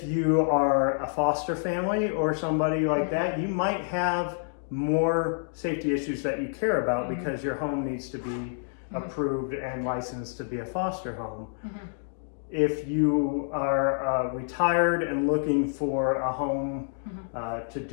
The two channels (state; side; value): silent; right; digital silence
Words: you are a foster family or somebody like that, you might have more safety issues that you care about because your home needs to be approved and licensed to be a foster home. If you are retired and looking for a home to